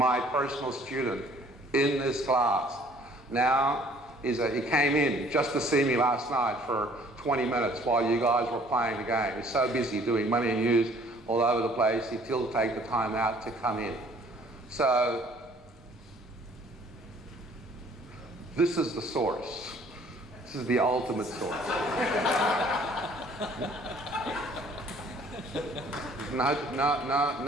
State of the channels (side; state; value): both; normal; correlation 0.56